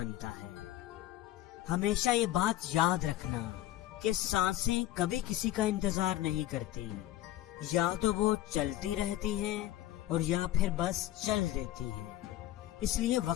ہے۔ ہمیشہ یہ بات یاد رکھنا کہ سانسیں کبھی کسی کا انتظار نہیں کرتی، یا تو وہ چلتی رہتی ہیں اور یا پھر بس چل دیتی ہیں۔ اس لیے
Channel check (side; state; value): right; quieter; 14.4 dB